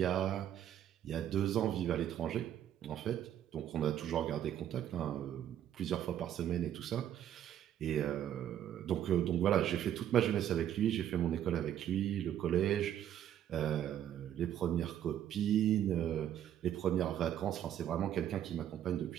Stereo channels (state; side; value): quieter; left; 10.7 dB